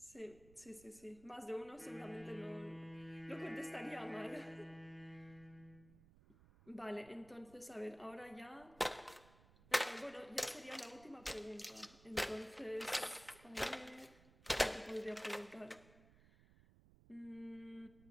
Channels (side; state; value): right; noise; rumble, 23 dB below the sound